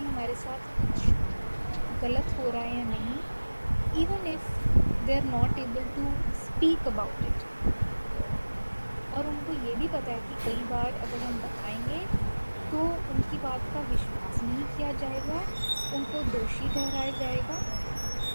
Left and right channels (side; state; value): both; inverted; correlation -1.00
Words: साथ कुछ गलत हो रहा है या नहीं, even if they are not able to speak about it. और उनको ये भी पता है कि कई बार अगर हम बताएंगे तो उनकी बात का विश्वास नहीं किया जाएगा, उनको दोषी ठहराया जाएगा